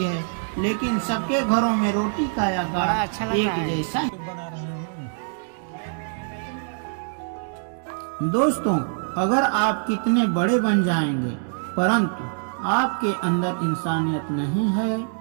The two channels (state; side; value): silent; left; 62 dB below the other